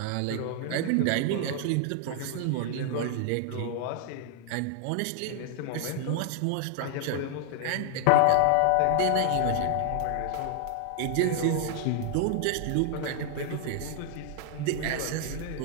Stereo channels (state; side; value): different; both; correlation 0.00